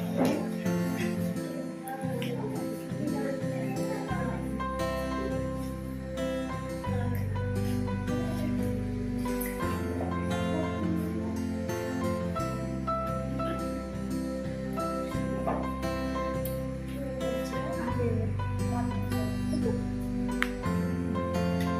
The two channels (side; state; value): both; identical; correlation 1.00